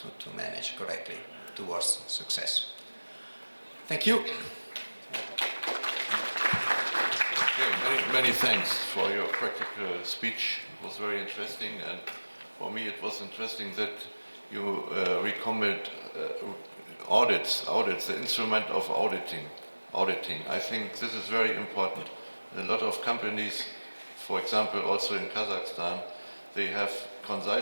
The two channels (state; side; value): inverted; both; correlation -1.00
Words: manage correctly towards success. Thank you. Okay, many thanks for your practical speech. It was very interesting, and for me it was interesting that you recommend audits, the instrument of auditing. I think this is very important. A lot of companies, for example, also in Kazakhstan, they have